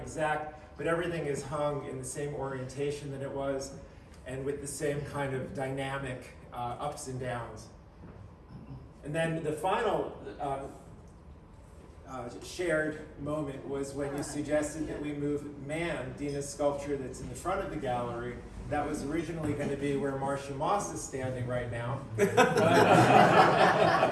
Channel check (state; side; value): identical; both; correlation 1.00